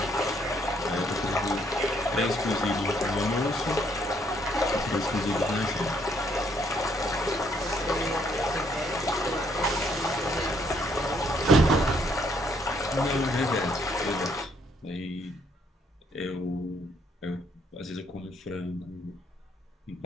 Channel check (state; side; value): normal; both; correlation 0.69